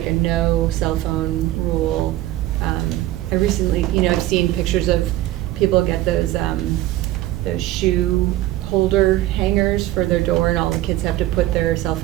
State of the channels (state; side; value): quieter; left; 15.2 dB